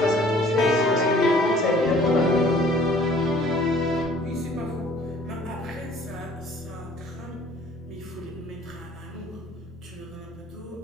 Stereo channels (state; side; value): normal; both; correlation 0.54